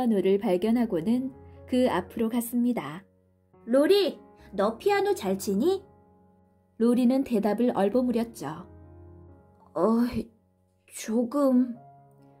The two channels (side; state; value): both; identical; correlation 1.00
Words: 발견하고는 그 앞으로 갔습니다. 로리, 너 피아노 잘 치니? 로리는 대답을 얼버무렸죠. 조금.